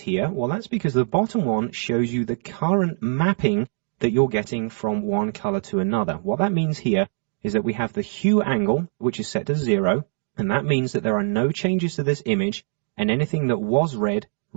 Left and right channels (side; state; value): left; silent; 63 dB below the other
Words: Well, that's because the bottom one shows you the current mapping that you're getting from one color to another. What that means here is that we have the hue angle, which is set to 0, And that means that there are no changes to this image, and anything that was red